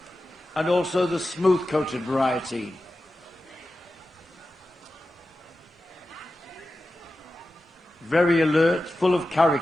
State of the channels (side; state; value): both; normal; correlation 0.93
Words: and also the smooth-coated variety. Very alert, full of